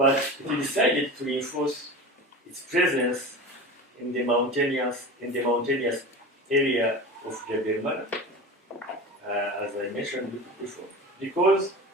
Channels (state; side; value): normal; both; correlation 0.31